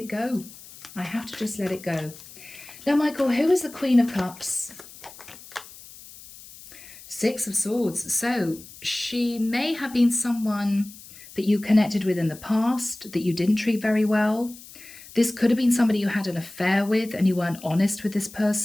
go. I have to just let it go. Now, Michael, who is the Queen of Cups? 6 of Swords. So she may have been someone that you connected with in the past that you didn't treat very well. This could have been somebody you had an affair with and you weren't honest with this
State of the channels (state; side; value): noise; left; hiss, 18 dB below the sound